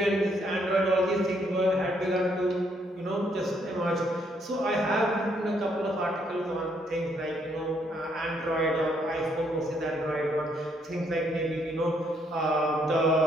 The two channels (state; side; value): normal; both; correlation 0.71